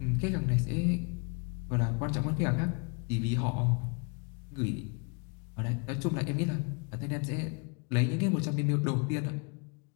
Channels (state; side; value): quieter; right; 34.5 dB